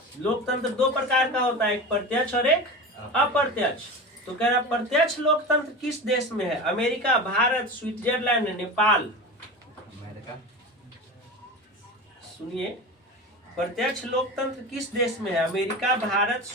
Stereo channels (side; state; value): both; normal; correlation 0.28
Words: लोकतंत्र दो प्रकार का होता है, एक प्रत्यक्ष और एक अप्रत्यक्ष। तो कह रहा प्रत्यक्ष लोकतंत्र किस देश में है? America, Bharat, Switzerland, Nepal. सुनिए, प्रत्यक्ष लोकतंत्र किस देश में है? America, Bharat,